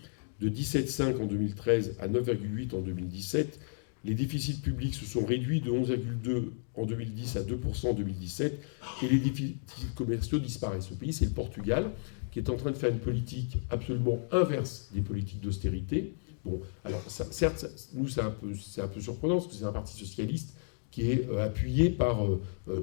de 17,5 en 2013 à 9,8 en 2017. Les déficits publics se sont réduits de 11,2 en 2010 à 2% en 2017 et les déficits commerciaux disparaissent. Ce pays, c'est le Portugal, qui est en train de faire une politique absolument inverse des politiques d'austérité. Bon, alors certes, nous, c'est un peu surprenant parce que c'est un parti socialiste qui est appuyé par...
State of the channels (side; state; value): right; silent; digital silence